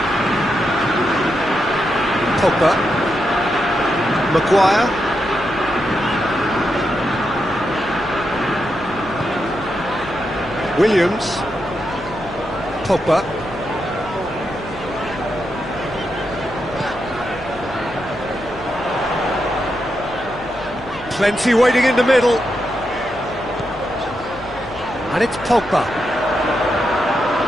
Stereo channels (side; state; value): left; noise; hum, 17 dB below the sound